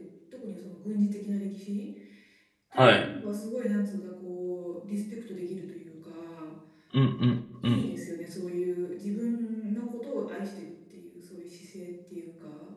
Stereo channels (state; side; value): identical; both; correlation 1.00